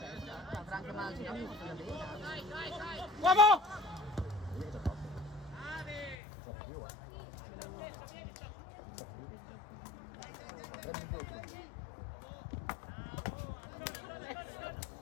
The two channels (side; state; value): right; drops out; at 6.2 s